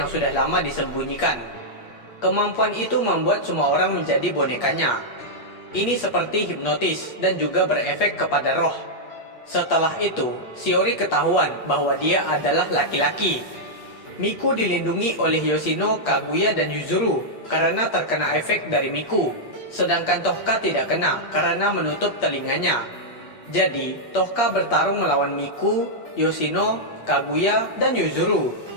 sudah lama disembunyikan. Kemampuan itu membuat semua orang menjadi bonekanya. Ini seperti hipnotis dan juga berefek kepada roh. Setelah itu, Shiori ketahuan bahwa dia adalah laki-laki. Miku dilindungi oleh Yoshino, Kaguya, dan Yuzuru karena terkena efek dari Miku, sedangkan Tohka tidak kena karena menutup telinganya. Jadi, Tohka bertarung melawan Miku, Yoshino, Kaguya, dan Yuzuru.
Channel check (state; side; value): late; right; 8.5 ms